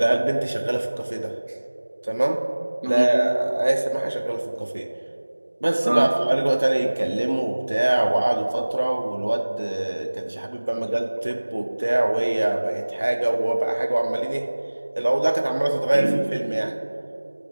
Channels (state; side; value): inverted; both; correlation -1.00